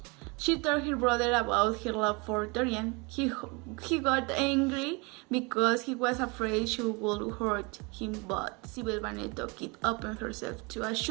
She told her brother about her love for Dorian. He got angry because he was afraid she would hurt him, but Sybil Vane took it upon herself to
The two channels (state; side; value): quieter; left; 28.9 dB